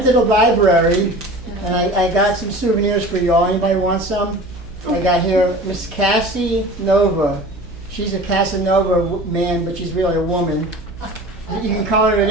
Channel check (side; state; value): right; noise; hum, 17 dB below the sound